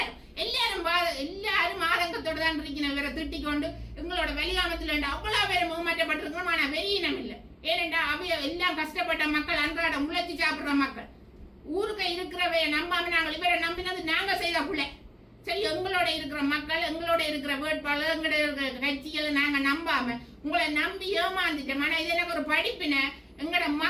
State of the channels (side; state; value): both; identical; correlation 1.00